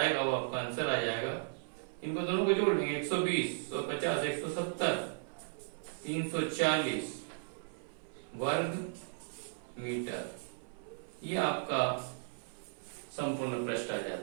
वो आपका आंसर आ जाएगा। इनको दोनों को जोड़ देंगे 120, 150, 170, 340 वर्ग मीटर, ये आपका संपूर्ण पृष्ठ आ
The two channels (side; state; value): left; silent; 54 dB below the other